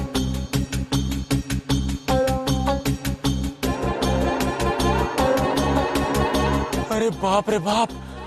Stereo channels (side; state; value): both; identical; correlation 1.00